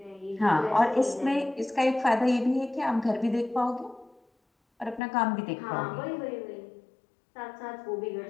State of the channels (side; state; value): right; drops out; at 5.0 s